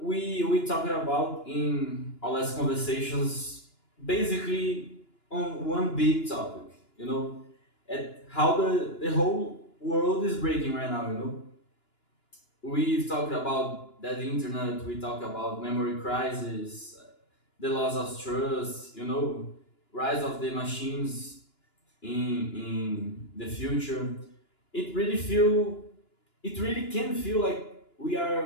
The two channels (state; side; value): late; right; 2.9 ms